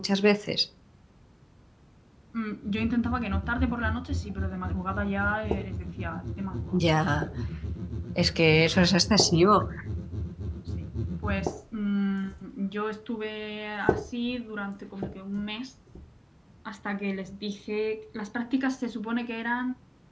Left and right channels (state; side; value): identical; both; correlation 1.00